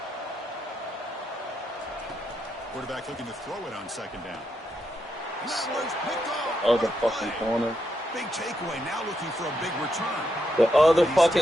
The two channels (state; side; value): normal; both; correlation 0.81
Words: Quarterback looking to throw it on second down. And that one's picked off. Other fucking corner. Big takeaway. Now looking for a big return. The other